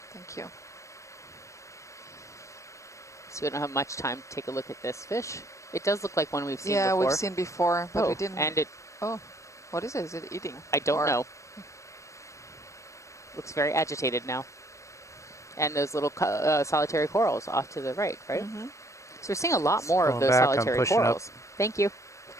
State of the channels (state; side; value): late; right; 0.15 ms